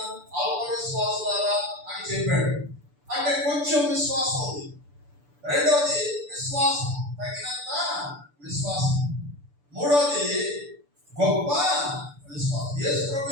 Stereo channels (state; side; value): late; left; 6.9 ms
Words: అల్ప విశ్వాసులారా అని చెప్పాడు, అంటే కొంచెం విశ్వాసం ఉంది. రెండవది విశ్వాసం, తగినంత విశ్వాసం. మూడవది గొప్ప విశ్వాసం. యేసు ప్రభు